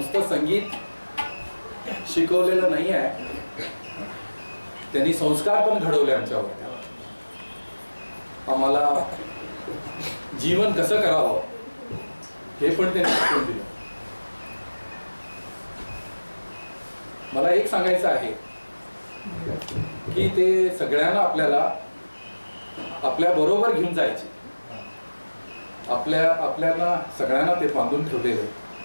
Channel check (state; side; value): inverted; both; correlation -1.00